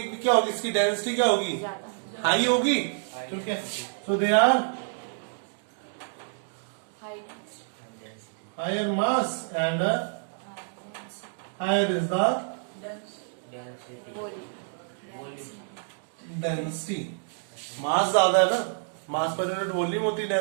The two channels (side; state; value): left; silent; digital silence